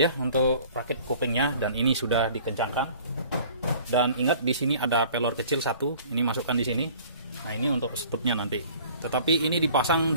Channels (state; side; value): inverted; both; correlation -0.49